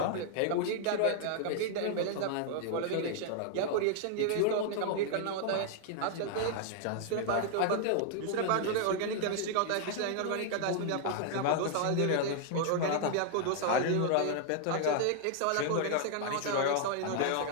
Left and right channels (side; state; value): both; different; correlation 0.00